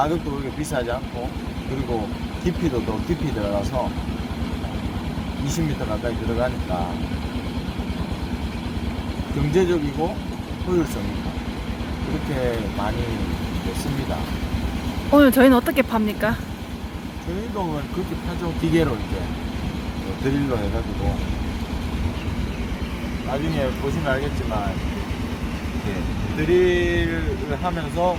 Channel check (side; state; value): both; identical; correlation 1.00